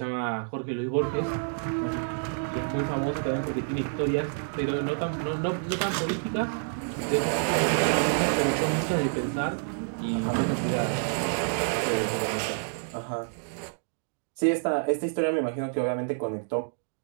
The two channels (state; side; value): silent; left; digital silence